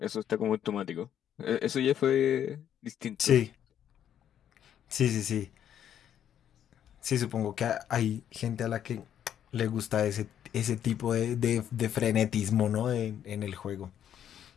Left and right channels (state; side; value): quieter; right; 9.9 dB